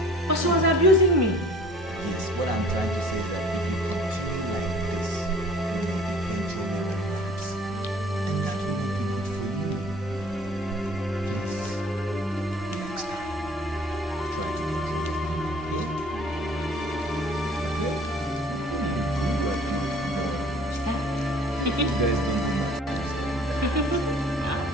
But she was abusing me. Yes, what I'm trying to say is that if you continue like this, you will eventually relapse. And that will not be good for you. Please, next time, try to control your anger. Yeah? You guys don't do much.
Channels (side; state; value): both; normal; correlation 0.51